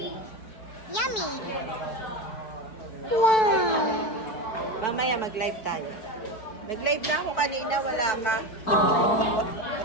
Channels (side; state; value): right; late; 4.6 ms